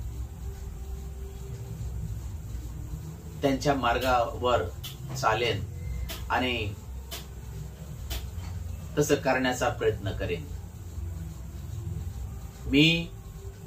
त्यांच्या मार्गावर चालेन आणि तसं करण्याचा प्रयत्न करेन. मी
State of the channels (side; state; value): both; identical; correlation 1.00